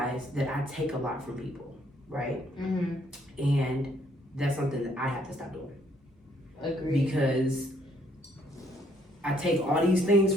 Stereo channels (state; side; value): normal; both; correlation 0.67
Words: that I take a lot from people, right? Mm-hmm. And that's something that I have to stop doing. Agreed. Because I take all these things